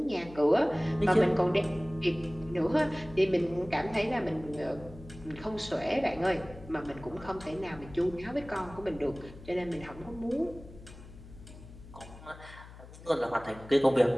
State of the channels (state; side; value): noise; left; hum, 17 dB below the sound